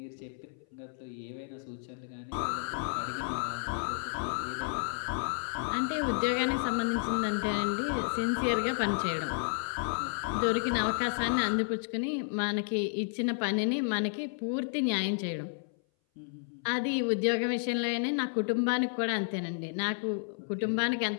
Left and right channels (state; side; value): silent; right; 57 dB below the other